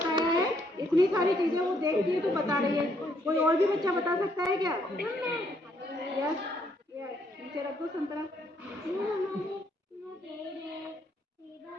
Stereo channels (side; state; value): both; normal; correlation 0.71